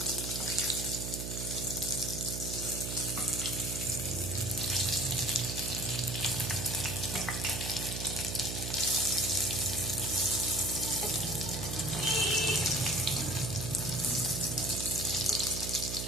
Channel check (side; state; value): right; noise; hum, 5 dB below the sound